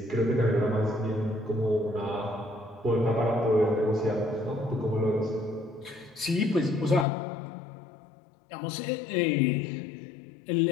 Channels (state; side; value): drops out; right; at 7.1 s